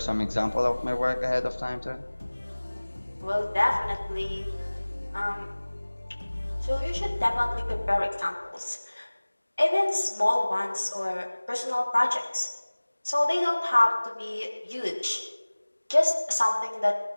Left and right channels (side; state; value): both; inverted; correlation -1.00